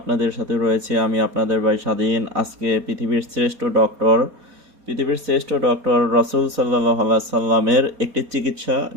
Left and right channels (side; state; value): left; late; 4.0 ms